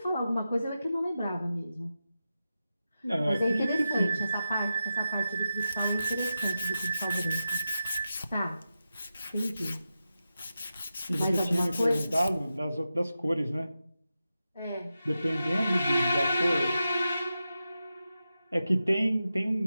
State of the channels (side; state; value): both; inverted; correlation -0.91